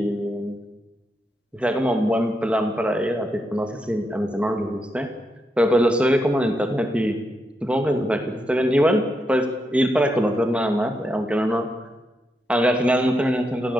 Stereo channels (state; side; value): normal; both; correlation 0.82